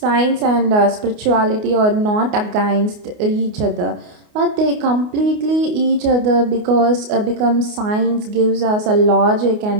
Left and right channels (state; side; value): late; left; 29 ms